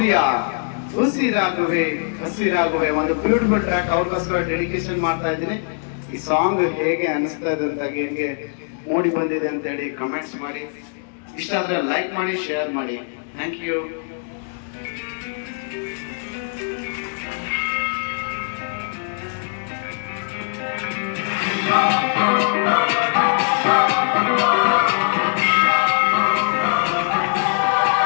ಹಸಿರಾಗುವೆ ಒಂದು ಬ್ಯೂಟಿಫುಲ್ ಟ್ರ್ಯಾಕ್ ಅವ್ರಿಗೋಸ್ಕರ ಡೆಡಿಕೇಶನ್ ಮಾಡ್ತಾ ಇದ್ದೀನಿ. ಈ ಸಾಂಗ್ ಹೇಗೆ ಅನಿಸ್ತಾ ಇದೆ ಅಂತ ಹೇಗೆ ಮೂಡಿ ಬಂದಿದೆ ಅಂತ ಹೇಳಿ ಕಮೆಂಟ್ಸ್ ಮಾಡಿ, ಇಷ್ಟ ಆದ್ರೆ ಲೈಕ್ ಮಾಡಿ, ಶೇರ್ ಮಾಡಿ. Thank you.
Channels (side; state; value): right; silent; 65 dB below the other